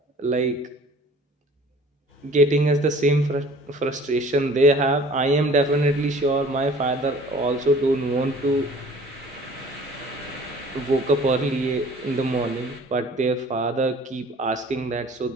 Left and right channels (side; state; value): both; normal; correlation 0.49